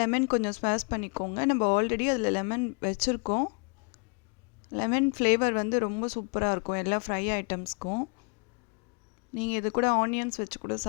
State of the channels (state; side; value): quieter; right; 37.7 dB